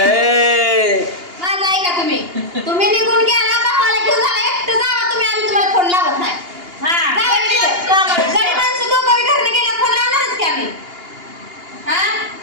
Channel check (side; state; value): left; late; 2.8 ms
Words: माझं ऐका तुम्ही निघून गेला भावाला घेऊन झाला एकटं जावा तुम्ही आम्ही तुम्हाला फोन लावत नाही गडी माणसं दोघं घरनं गेल्या फोन लावणारच की आम्ही हा